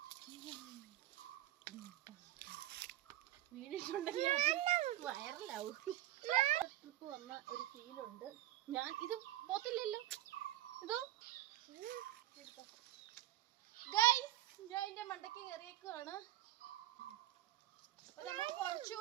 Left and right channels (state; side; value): quieter; left; 14.3 dB